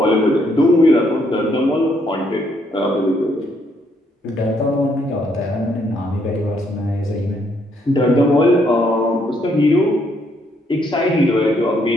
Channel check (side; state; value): both; normal; correlation 0.72